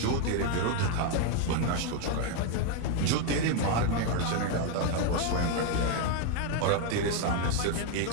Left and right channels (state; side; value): different; both; correlation 0.01